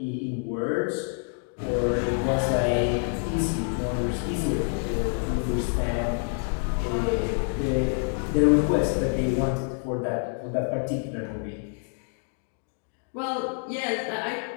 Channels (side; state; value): right; silent; 55 dB below the other